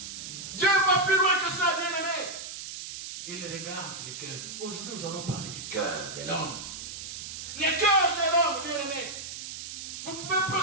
Dieu va plus loin que ça, bien-aimé. Il regarde le cœur. Aujourd'hui, nous allons parler du cœur de l'homme. Le cœur de l'homme, bien-aimé. Vous pouvez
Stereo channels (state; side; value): noise; right; hiss, 9 dB below the sound